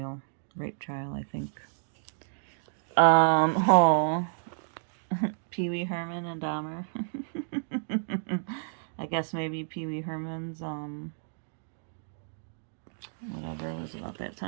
Rape trial, I think. Oh, Pee Wee Herman and Dahmer. I guess maybe Pee Wee Herman's, whatever was about that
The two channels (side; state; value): left; silent; digital silence